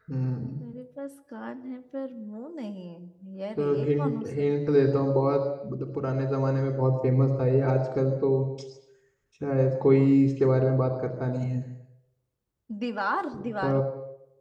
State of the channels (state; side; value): identical; both; correlation 1.00